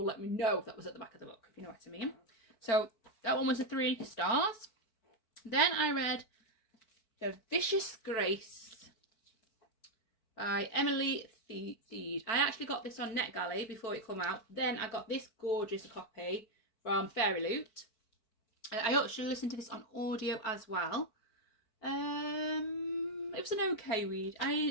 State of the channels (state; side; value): late; right; 4.5 ms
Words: let me know if that was at the back of the book, if you know what I mean. So that one was a 3 stars. Then I read The Vicious Grace by Emily Theed. I actually got this on NetGalley before it come out. Then I got this gorgeous copy from Fairy Loot. I actually listened to this on audio as well. It was an okay read.